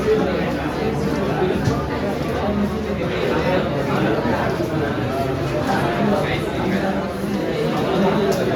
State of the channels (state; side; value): identical; both; correlation 1.00